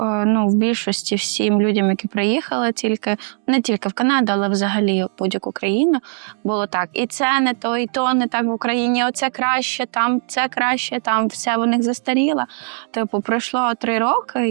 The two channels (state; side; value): silent; left; 56 dB below the other